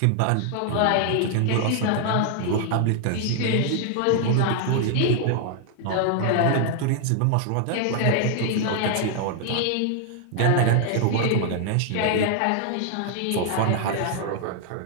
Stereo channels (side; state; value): both; different; correlation 0.00